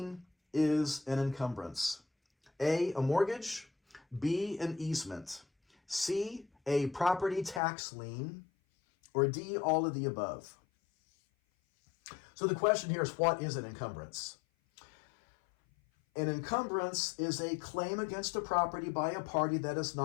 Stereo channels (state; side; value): drops out; right; at 7.6 s